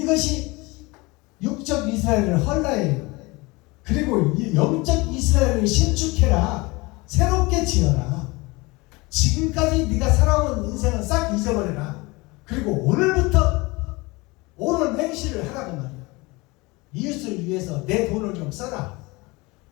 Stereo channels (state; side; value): quieter; right; 24.1 dB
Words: 육적 이스라엘을 헐라해요. 그리고 영적 이스라엘을 신축해라. 새롭게 지어라. 지금까지 네가 살아온 인생은 싹 잊어버려라. 그리고 오늘부터 옳은 행실을 하라고 말이야. 이웃을 위해서 내 돈을 좀 써라.